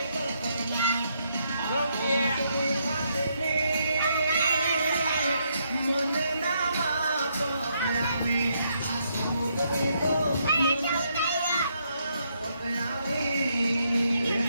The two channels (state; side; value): inverted; both; correlation -0.76